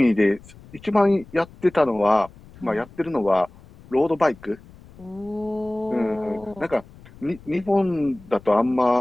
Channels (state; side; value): noise; left; rumble, 22 dB below the sound